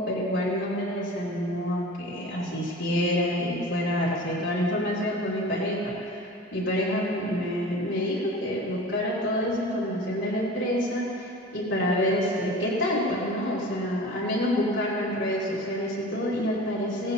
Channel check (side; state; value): both; normal; correlation 0.38